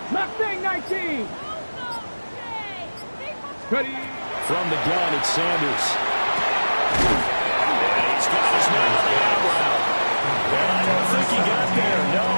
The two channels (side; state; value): both; inverted; correlation -1.00